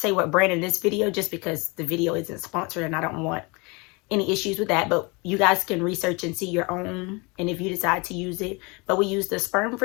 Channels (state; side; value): quieter; right; 28.4 dB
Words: what brand in this video just because the video isn't sponsored and I don't want any issues with that, but you guys can research and see your own, and if you decide to use it. But we use the sperm